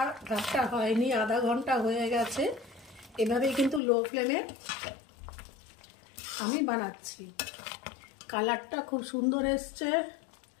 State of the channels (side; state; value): right; drops out; at 3.8 s